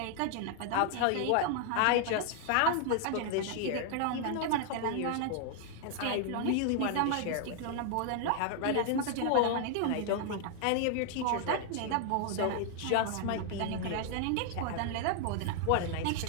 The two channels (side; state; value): both; different; correlation 0.00